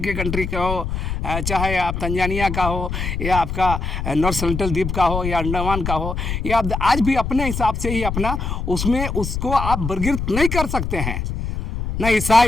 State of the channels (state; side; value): noise; left; rumble, 4 dB below the sound